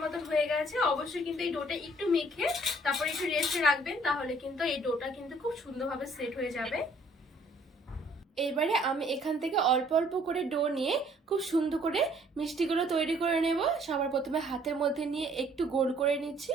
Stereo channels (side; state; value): both; normal; correlation 0.60